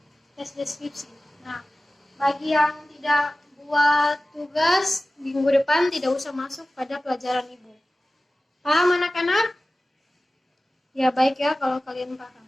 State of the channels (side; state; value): both; normal; correlation 0.96